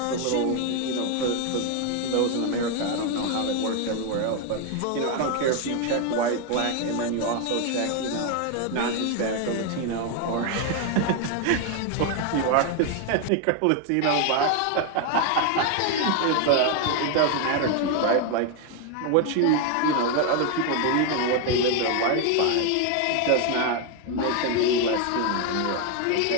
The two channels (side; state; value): both; different; correlation 0.01